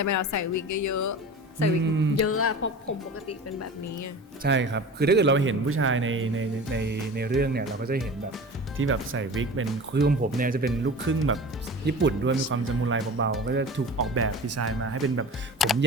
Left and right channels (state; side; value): normal; both; correlation 0.36